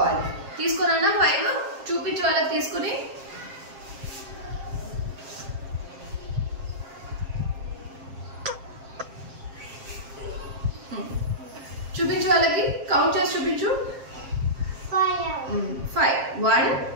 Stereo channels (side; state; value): left; late; 7.6 ms